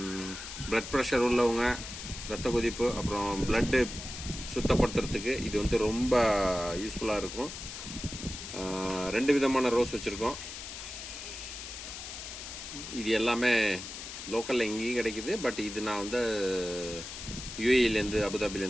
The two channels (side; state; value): left; noise; hiss, 9 dB below the sound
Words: Blood pressure உள்ளவங்க, ரத்த கொதிப்பு, அப்புறம் blood சுத்தப்படுத்துறதுக்கு இது வந்து ரொம்ப யூஸ்ஃபுல்லாக இருக்கும். ரெண்டு விதமான ரோஸ் வச்சுருக்கோம். இது எல்லாமே லோக்கலில் எங்கேயும் கிடைக்குது. பட் இது நான் வந்து யூஏஇலேருந்து